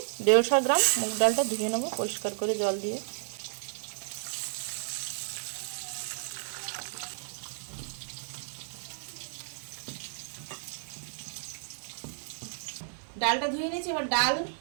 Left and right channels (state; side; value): silent; left; 56 dB below the other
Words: 150 গ্রাম, মুগ ডালটা ধুয়ে নেব পরিষ্কার করে জল দিয়ে। ডালটা ধুয়ে নিয়েছি, এবার ডাল